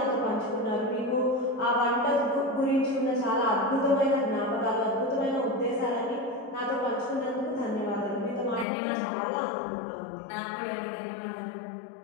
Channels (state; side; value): drops out; right; at 8.7 s